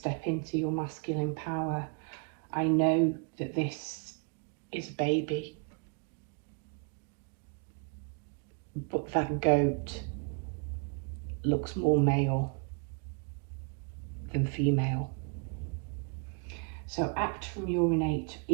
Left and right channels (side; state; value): left; quieter; 36.8 dB